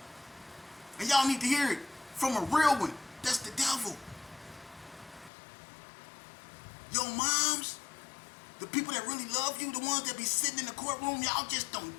And y'all need to hear it from a real one. That's the devil. Your moms, the people that really love you, the ones that be sitting in the courtroom, y'all just don't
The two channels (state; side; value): drops out; right; at 5.3 s